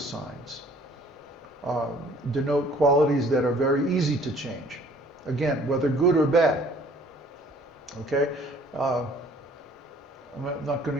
denote qualities that are very easy to change. Again, whether good or bad. Okay? I'm not going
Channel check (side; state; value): both; normal; correlation 0.56